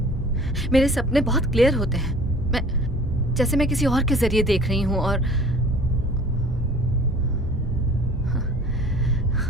सपने बहुत क्लियर होते हैं। जैसे मैं किसी और के जरिए देख रही हूँ। और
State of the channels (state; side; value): normal; both; correlation 0.47